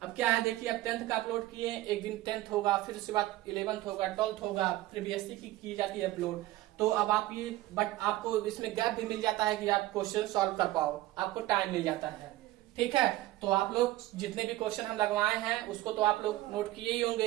अब क्या है देखिए, अब 10th का अपलोड किए, एक दिन 10th होगा, फिर उसके बाद 11th होगा, 12th होगा, फिर बीएससी की जाती है अपलोड, तो अब आप ये बट आपको इसमें गैप भी मिल जाता है कि आप क्वेश्चन सॉल्व कर पाओ, आपको टाइम मिल जाता है, ठीक है। तो आप लोग जितने भी क्वेश्चन हम लगवाए हैं उसको तो आप लोग नोट किए ही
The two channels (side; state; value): left; quieter; 16.6 dB